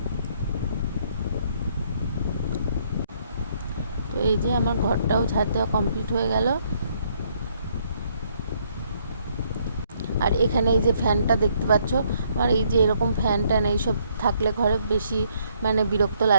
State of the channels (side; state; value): both; inverted; correlation -0.69